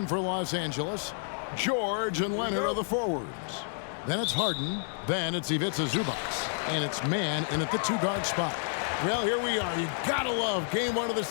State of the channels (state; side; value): silent; right; 58 dB below the other